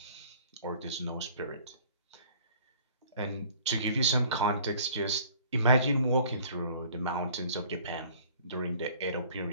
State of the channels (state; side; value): inverted; both; correlation -0.52